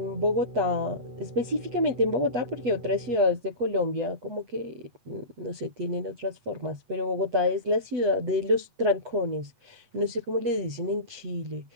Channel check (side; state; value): left; late; 8.5 ms